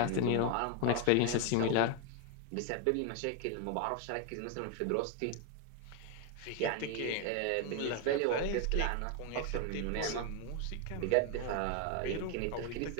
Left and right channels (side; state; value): both; different; correlation 0.01